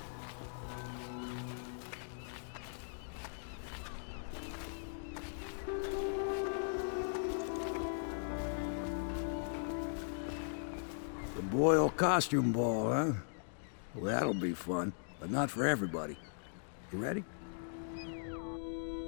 The Boyle costume ball, huh? Well, that'll be fun, but not for everybody. You ready?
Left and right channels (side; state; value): right; silent; digital silence